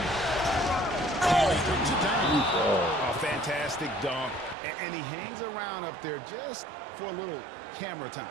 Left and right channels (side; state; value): left; drops out; at 4.5 s